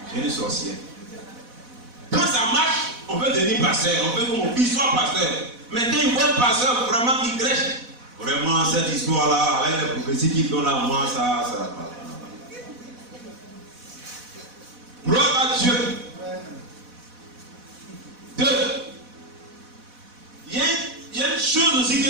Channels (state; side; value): late; left; 4.1 ms